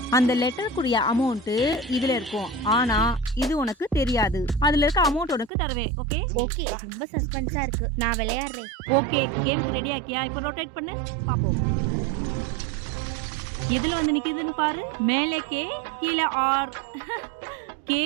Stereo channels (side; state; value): left; drops out; at 5.5 s